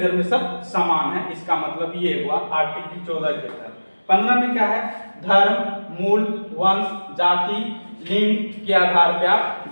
में सब समान है। इसका मतलब ये हुआ आर्टिकल 14 के तहत। 15 में क्या है? धर्म, मूल, वंश, जाति, लिंग के आधार पर आप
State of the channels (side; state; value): both; inverted; correlation -1.00